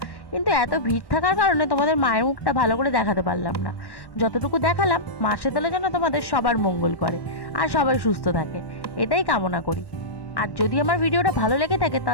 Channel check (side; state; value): right; late; 1.1 ms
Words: কিন্তু এত ভিড় থাকার কারণে তোমাদের মায়ের মুখটা ভালো করে দেখাতে পারলাম না। যতটুকু দেখালাম, মা শীতলা যেন তোমাদের সবার মঙ্গল করে আর সবাই সুস্থ থাকে, এটাই কামনা করি। আর যদি আমার ভিডিওটা ভালো লেগে থাকে